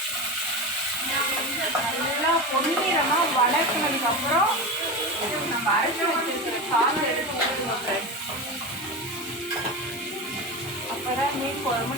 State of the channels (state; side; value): normal; both; correlation 0.23